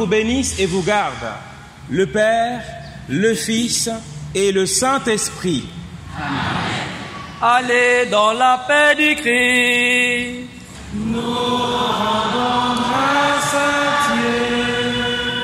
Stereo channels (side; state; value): both; identical; correlation 1.00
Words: bénisse et vous garde, le Père, le Fils et le Saint-Esprit. Amen. Allez dans la paix du Christ. Nous rendons grâce à Dieu.